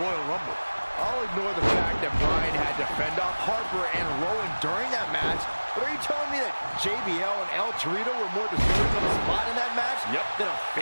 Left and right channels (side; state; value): both; inverted; correlation -1.00